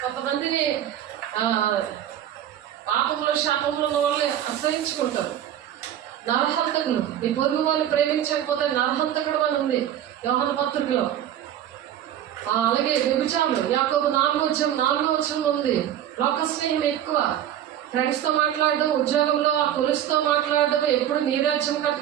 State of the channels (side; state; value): left; quieter; 11.0 dB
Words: కొంతమంది పాపంలో శాపంలో ఉన్న వాళ్ళే అసహించుకుంటారు. నరహంతకులు, నీ పొరుగు వాళ్ళు ప్రేమించకపోతే నరహంతకుడు అని ఉంది యోహాను పత్రికలో. అలాగే వ్యభిచారులు యాకోబు 4:4 ఉంది. లోక స్నేహం ఎక్కువ, ఫ్రెండ్స్తో మాట్లాడడం, ఉద్యోగంలో ఆ కొలుసుతో మాట్లాడడం, ఎప్పుడు నీ రాజ్యం